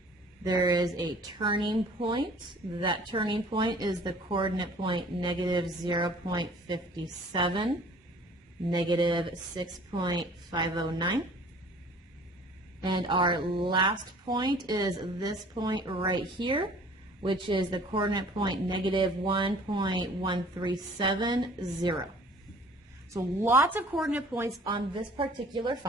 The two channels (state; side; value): normal; both; correlation 0.51